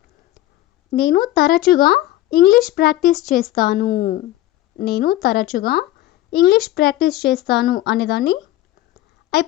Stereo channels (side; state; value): right; quieter; 15.2 dB